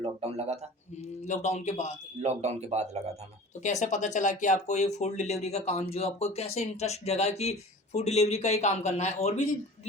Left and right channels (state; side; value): normal; both; correlation 0.40